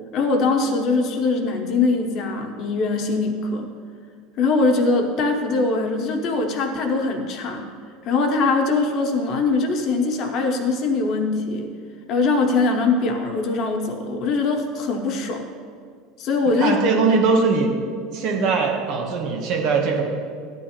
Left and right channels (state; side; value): normal; both; correlation 0.33